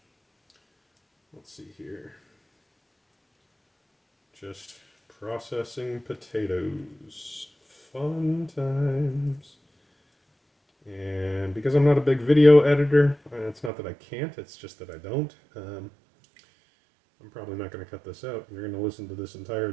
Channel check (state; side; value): drops out; left; at 13.7 s